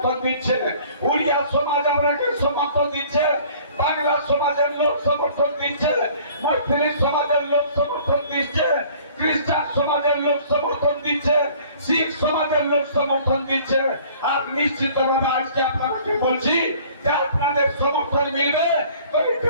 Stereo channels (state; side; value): inverted; both; correlation -0.52